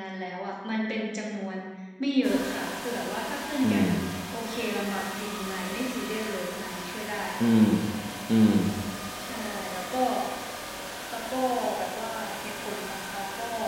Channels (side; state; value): both; identical; correlation 1.00